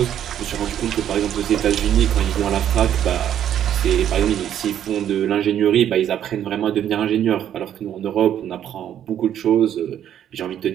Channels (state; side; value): quieter; left; 10.3 dB